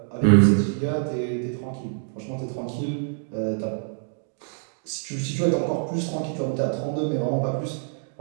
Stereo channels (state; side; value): silent; left; 61 dB below the other